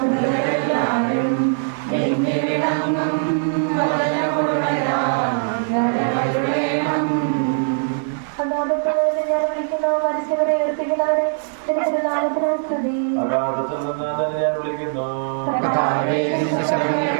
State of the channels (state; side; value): silent; left; digital silence